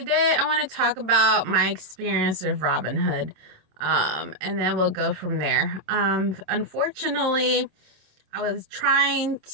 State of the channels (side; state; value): left; late; 27 ms